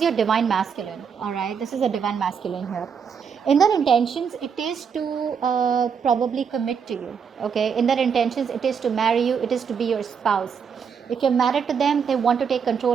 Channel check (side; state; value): left; quieter; 6.7 dB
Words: your divine masculine, all right? This is a divine masculine here. In their intentions, it is to probably commit to you, okay? In their intentions, it is to marry you, it is to be your spouse. If you're married to them, they want to take